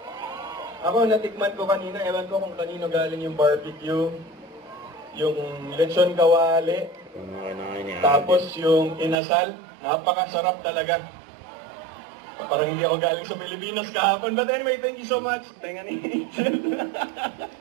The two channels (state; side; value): drops out; left; at 9.2 s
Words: Ako, natikman ko kanina. Ewan ko kung kanino galing yung barbecue. Yung lechon kawali. Tapos yung inasal. Napakasarap talaga. Parang hindi ako galing sa Pilipinas kahapon. But anyway, thank you so much. Tenga ni Angel.